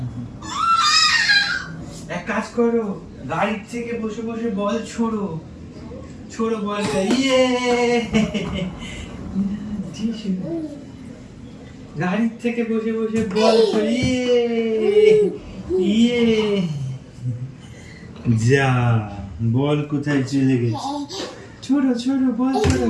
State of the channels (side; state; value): both; identical; correlation 1.00